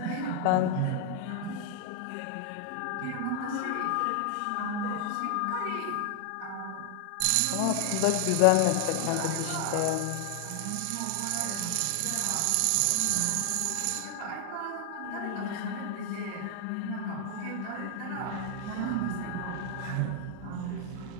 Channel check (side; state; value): both; different; correlation 0.00